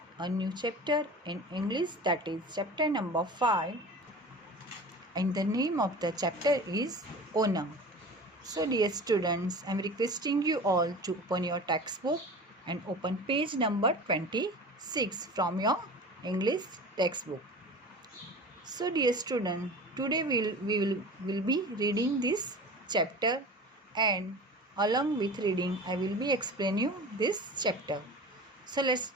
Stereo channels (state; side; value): normal; both; correlation 0.36